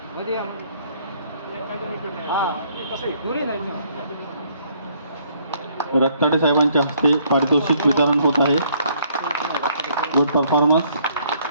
रक्ताडे साहेबांच्या हस्ते पारितोषिक वितरण होत आहे. Good performance.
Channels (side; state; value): both; inverted; correlation -0.65